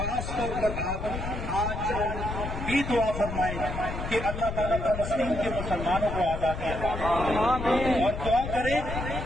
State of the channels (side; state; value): left; noise; rumble, 6 dB below the sound